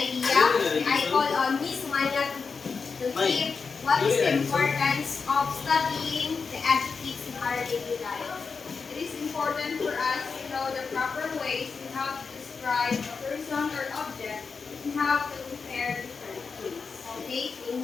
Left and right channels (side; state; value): right; quieter; 5.1 dB